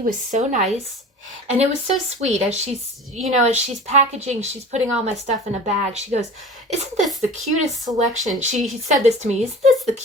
was so nice. And it was so sweet as she's packaging, she's putting all my stuff in a bag. She goes, "Isn't this the cutest selection?" She said this to me, "Isn't this the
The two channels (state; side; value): normal; both; correlation 0.38